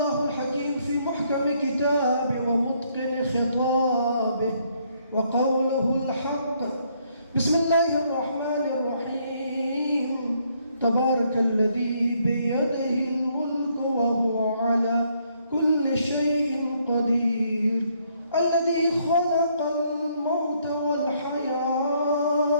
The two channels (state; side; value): inverted; both; correlation -0.70